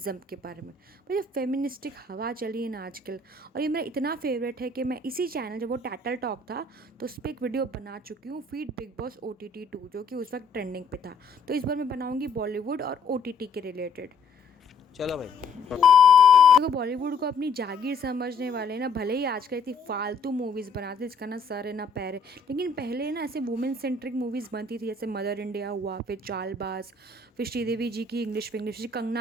के बारे में। भाई जो फेमिनिस्टिक हवा चली है ना आजकल, और ये मेरा इतना फेवरेट है कि मैं इसी चैनल, जब वो टैटल टॉक था तो उस पर एक वीडियो बना चुकी हूँ, फीड बिग बॉस OTT 2, जो कि उस वक्त ट्रेंडिंग पे था। तो इस बार मैं बनाऊंगी बॉलीवुड और OTT के रिलेटेड। चलो भाई। देखो, बॉलीवुड को अपनी जागीर समझने वाले ना भले ही आजकल इतनी फालतू मूवीज़ बनाते हैं जिसका ना सर है ना पैर है, लेकिन पहले ना ऐसे वुमेन सेंट्रिक मूवीज़ बनती थी, जैसे मदर इंडिया हुआ, फिर चालबाज, फिर श्रीदेवी जी की इंग्लिश विंग्लिश,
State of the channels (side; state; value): right; quieter; 3.8 dB